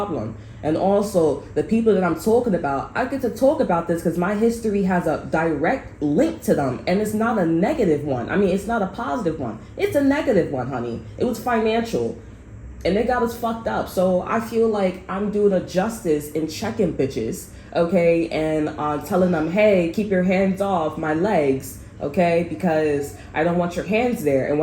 And also the people that I'm talking about, I get to talk about this because my history has a direct link to them, and it's not a negative one. I mean, it's not a positive one. It's a negative one, honey. It was financial, and they got us fucked up. So I feel like I'm doing a justice in checking bitches, okay, and telling them, hey, keep your hands off my legs, okay, because I don't want your hands there, and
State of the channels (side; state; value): both; identical; correlation 1.00